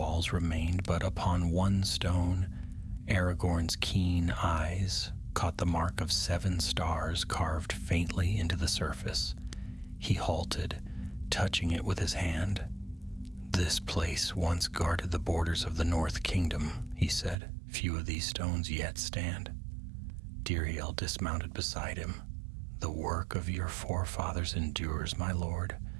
remained, but upon one stone, Aragorn's keen eyes caught the mark of 7 stars carved faintly into the surface. He halted, touching it with his hand. "This place once guarded the borders of the North Kingdom," he said. "Few of these stones yet stand." Diriel dismounted beside him. "The work of your forefathers endures, my lord,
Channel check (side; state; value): left; drops out; at 17.4 s